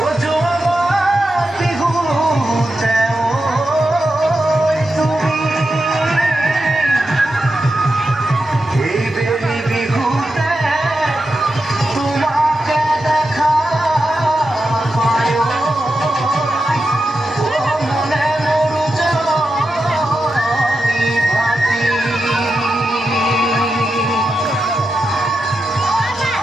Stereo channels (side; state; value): both; normal; correlation 0.89